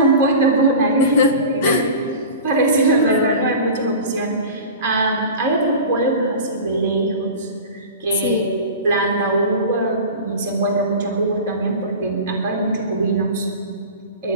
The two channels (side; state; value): both; inverted; correlation -0.34